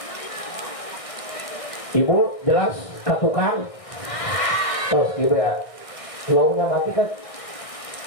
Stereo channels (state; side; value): late; right; 1.6 ms